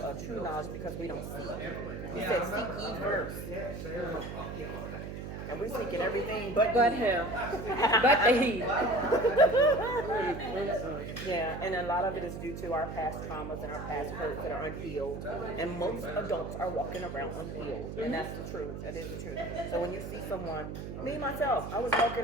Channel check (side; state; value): right; noise; hum, 8 dB below the sound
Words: a true knowledge because we don't see. He said, seek ye first. And we're seeking everything but him. But the he. Yeah, and a lot of it is due to our past traumas and our past hurts that are unhealed. And most adults are walking around unhealed. And that's the truth. That is the truth. So when you see someone, me myself, I was walking,